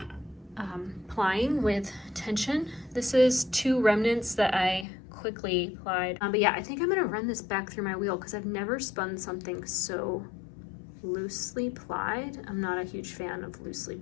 plying with tension. This is 2 remnants that I quickly plied. But yeah, I think I'm gonna run this back through my wheel because I've never spun something so loosely plied. I'm not a huge fan of loosely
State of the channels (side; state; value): right; drops out; at 4.9 s